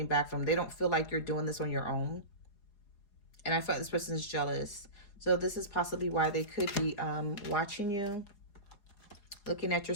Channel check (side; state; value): right; late; 4.8 ms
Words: back from them. They don't feel like you're doing this on your own. And I feel like this person is jealous. So this is possibly why they could be watching you, looking at your